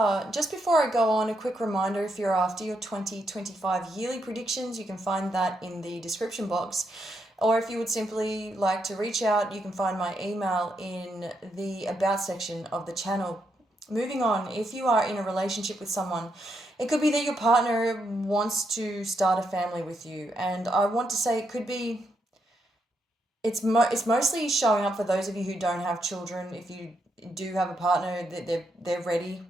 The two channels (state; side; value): normal; both; correlation 0.80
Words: Just before I go on, a quick reminder, if you're after your 2025 yearly predictions, you can find that in the description box. Or if you would simply like to reach out, you can find my email in the About section of the channel. Moving on, if you are in a relationship with someone, it could be that your partner wants to start a family with you. And I want to say it could be it's mostly showing up for those of you who don't have children. If you do have a partner, that they're ready,